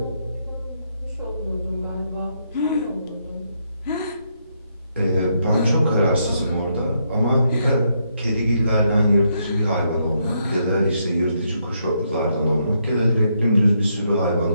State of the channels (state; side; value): inverted; both; correlation -0.77